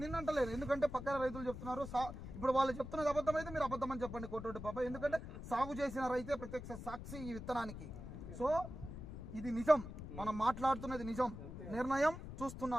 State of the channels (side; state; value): left; noise; rumble, 10 dB below the sound